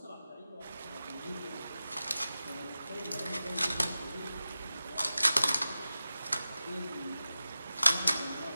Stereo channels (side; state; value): both; inverted; correlation -0.94